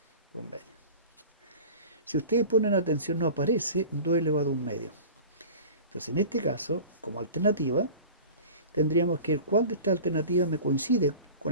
Un medio. Si ustedes ponen atención, no aparece 2 elevado a un medio. Entonces, en este caso, como alternativa, tendríamos que el cuál de estas alternativas me coincide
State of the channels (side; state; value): both; inverted; correlation -0.38